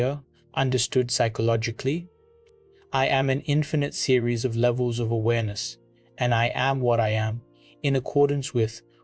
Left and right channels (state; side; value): identical; both; correlation 1.00